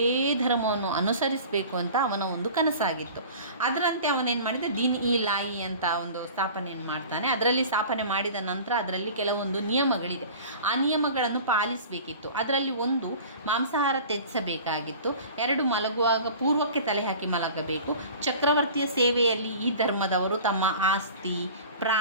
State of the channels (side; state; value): both; inverted; correlation -0.41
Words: ಧರ್ಮವನ್ನು ಅನುಸರಿಸಬೇಕು ಅಂತ ಅವನ ಒಂದು ಕನಸಾಗಿತ್ತು. ಅದರಂತೆ ಅವನೇನು ಮಾಡಿದ, ದೀನ್ ಇ ಲಾಯಿ ಅಂತ ಒಂದು ಸ್ಥಾಪನೆಯನ್ನು ಮಾಡ್ತಾನೆ. ಅದರಲ್ಲಿ ಸ್ಥಾಪನೆ ಮಾಡಿದ ನಂತರ ಅದರಲ್ಲಿ ಕೆಲವೊಂದು ನಿಯಮಗಳಿದೆ. ಆ ನಿಯಮಗಳನ್ನು ಪಾಲಿಸಬೇಕಿತ್ತು. ಅದರಲ್ಲಿ ಒಂದು, ಮಾಂಸಾಹಾರ ತ್ಯಜಿಸಬೇಕಾಗಿತ್ತು. 2, ಮಲಗುವಾಗ ಪೂರ್ವಕ್ಕೆ ತಲೆ ಹಾಕಿ ಮಲಗಬೇಕು. ಚಕ್ರವರ್ತಿಯ ಸೇವೆಯಲ್ಲಿ ಈ ಧರ್ಮದವರು ತಮ್ಮ ಆಸ್ತಿ,